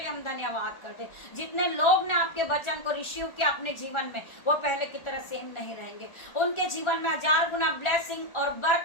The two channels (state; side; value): late; right; 1.4 ms